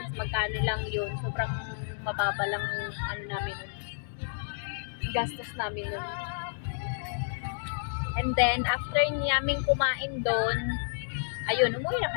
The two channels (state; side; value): silent; right; digital silence